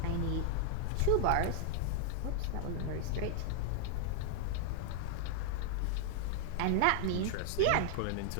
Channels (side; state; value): both; different; correlation 0.00